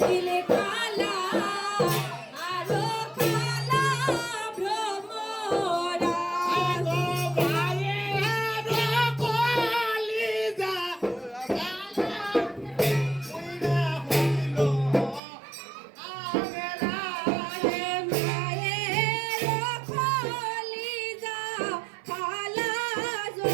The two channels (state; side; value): drops out; left; at 15.2 s